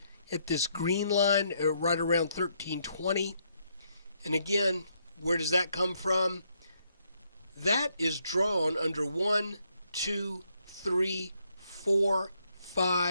at this green line right around 1320. And again, where does that come from? That is drawn under 1, 2, 3, 4,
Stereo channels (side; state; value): both; inverted; correlation -0.74